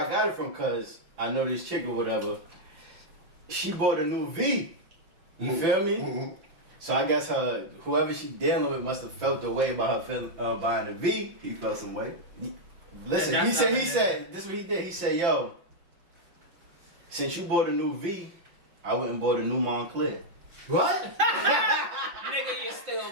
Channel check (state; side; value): late; left; 5.8 ms